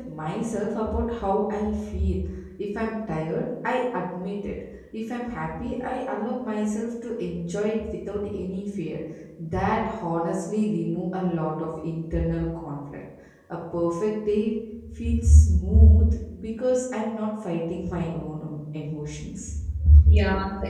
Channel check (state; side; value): identical; both; correlation 1.00